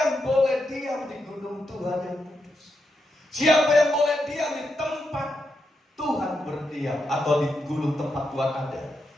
boleh diam di gunung Tuhan yang kudus? Siapa yang boleh diam di tempat Tuhan berdiam atau di gunung tempat Tuhan ada?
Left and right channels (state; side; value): normal; both; correlation 0.84